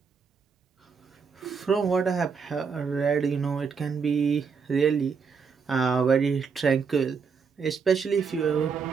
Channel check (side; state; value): left; quieter; 5.7 dB